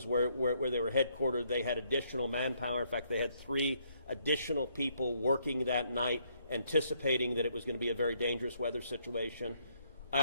where they were headquartered. They had additional manpower. In fact, they had 3 additional people working that night, anticipating that it was going to be a very dangerous weather situation. I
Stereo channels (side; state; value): both; inverted; correlation -0.71